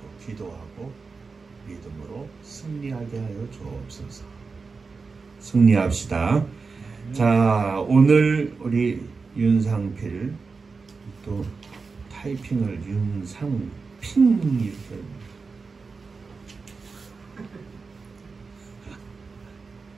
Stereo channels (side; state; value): left; quieter; 4.6 dB